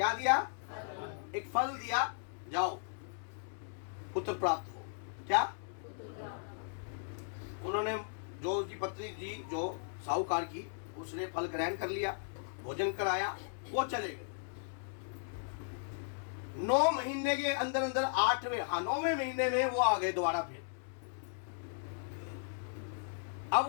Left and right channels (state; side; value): silent; right; digital silence